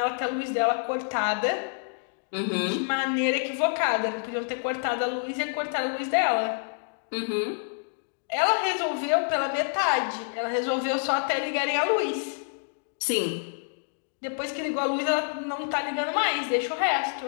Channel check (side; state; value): right; silent; digital silence